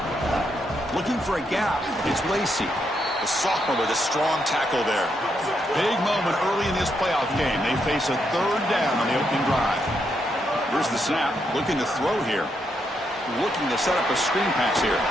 Looking for a gap. It's Lacey, the sophomore with a strong tackle there. Big moment early in this playoff game. They face a third down on the opening drive. Here's the snap. Looking to throw here. Looking to set up a screen pass here.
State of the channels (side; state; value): both; normal; correlation 0.79